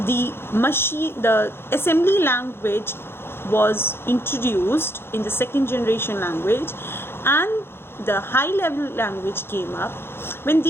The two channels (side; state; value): right; late; 0.11 ms